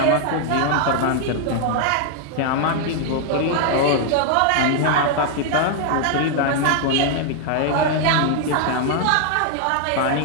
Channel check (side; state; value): both; different; correlation 0.00